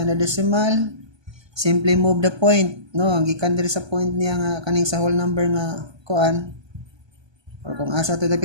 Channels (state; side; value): late; left; 1.2 ms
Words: the decimal? Simply move the point, gikan diri sa point niya nga kaning sa whole number nga kuan, or kung asa to